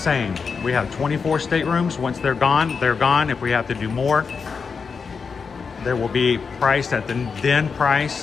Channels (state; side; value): quieter; right; 5.5 dB